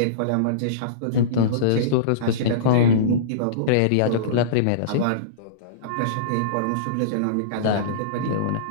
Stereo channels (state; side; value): different; both; correlation -0.05